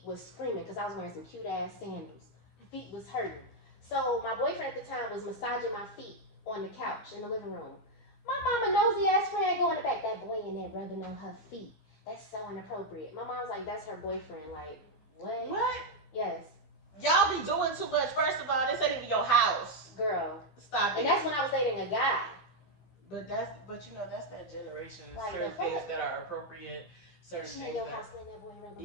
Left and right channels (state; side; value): late; right; 14 ms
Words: was screaming because I was wearing some cute ass sandals. Feet was hurting. So my boyfriend at the time was massaging my feet on the couch in the living room. My mama nosy ass friend go in the back, that boy in there rubbing on her feet. That's so inappropriate. My mom's like, that's her boyfriend. Like, what? What? Yes. Y'all be doing too much. First of all, this ain't even your house. Girl. Stop it. And that's when I was dating a guy. But you know, that's that generation. Like, certain things that are appropriate. Certain she things in your that, house letting that boy rub on